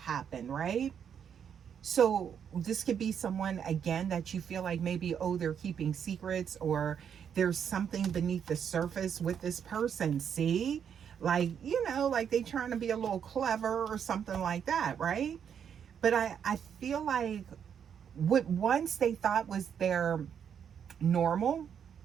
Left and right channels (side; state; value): left; quieter; 8.0 dB